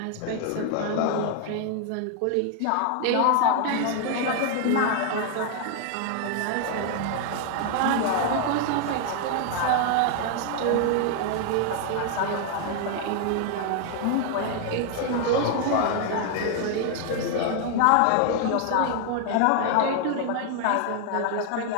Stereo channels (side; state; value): both; different; correlation 0.00